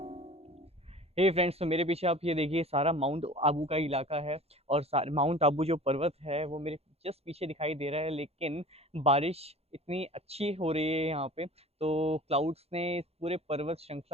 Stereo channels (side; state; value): left; late; 0.29 ms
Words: हे फ्रेंड्स, तो मेरे पीछे आप ये देखिए सारा माउंट आबू का इलाका है और माउंट आबू जो पर्वत है वो मेरे जस्ट पीछे दिखाई दे रहा है, लेकिन बारिश इतनी अच्छी हो रही है यहाँ पे तो क्लाउड्स ने इस पूरे पर्वत